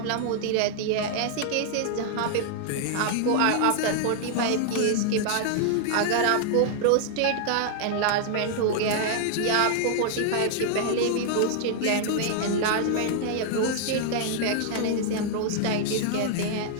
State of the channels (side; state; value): both; different; correlation 0.00